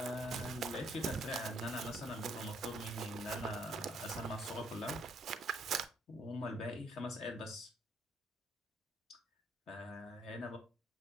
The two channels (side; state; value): both; normal; correlation 0.67